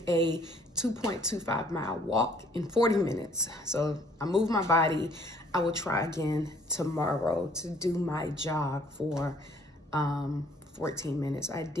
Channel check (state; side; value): normal; both; correlation 0.60